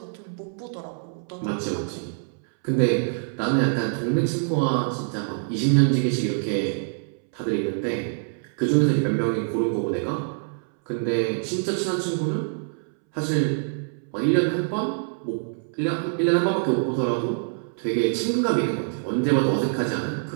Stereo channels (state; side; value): silent; left; 62 dB below the other